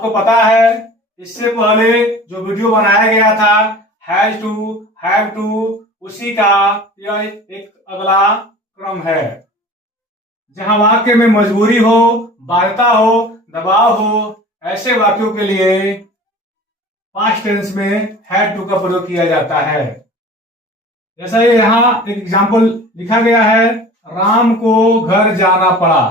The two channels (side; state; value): both; normal; correlation 0.41